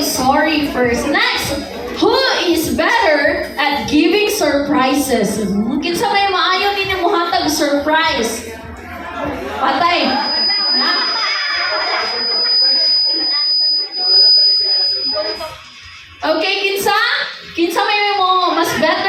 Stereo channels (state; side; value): identical; both; correlation 1.00